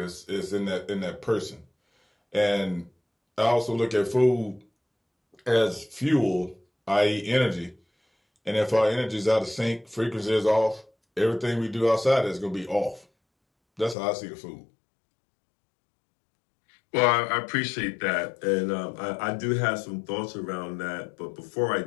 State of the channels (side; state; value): right; drops out; at 14.0 s